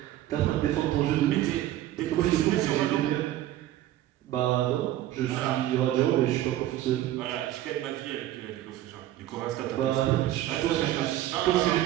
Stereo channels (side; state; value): left; quieter; 13.7 dB